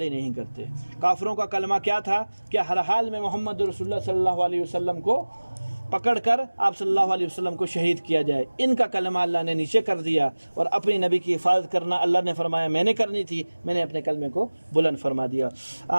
نہیں کرتے۔ کافروں کا کلمہ کیا تھا کہ ہر حال میں محمد رسول اللہ صلی اللہ علیہ وسلم کو پکڑ کر آپ صلی اللہ علیہ وسلم کو شہید کیا جائے، ان کا کلمہ اللہ نے نیچے کر دیا، اور اپنی نبی کی حفاظت کرنا اللہ نے فرمایا میں نے کرنی تھی، میں نے اپنے کلمے کو بلند فرما دیا۔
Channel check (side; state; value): both; inverted; correlation -1.00